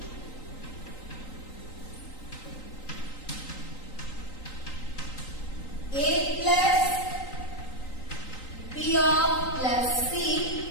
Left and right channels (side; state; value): right; late; 3.8 ms